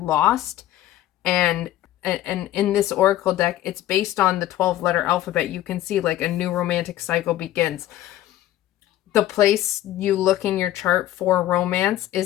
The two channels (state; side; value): quieter; right; 13.8 dB